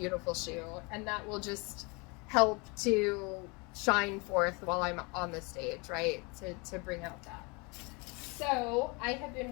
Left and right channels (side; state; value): right; quieter; 29.1 dB